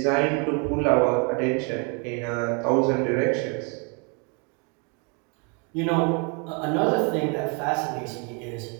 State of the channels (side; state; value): left; quieter; 34.6 dB